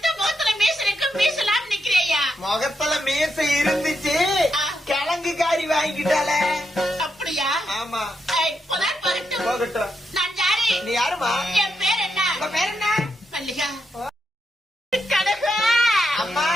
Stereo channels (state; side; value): normal; both; correlation 0.83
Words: முகத்துல மீச இருக்கு, மீசலாம் நிக்கிறியா? முகத்துல மீசை இருந்துச்சு, கிழங்கு காரி வாங்கிட்டால. அப்படியா? ஆமா. இப்பதான் வரட்டும். போகட்டும். நான் யாரு? நீ யாருமா? என் பேர் என்ன? உங்க பேர் என்ன? மல்லிகா. கனகா. அம்மா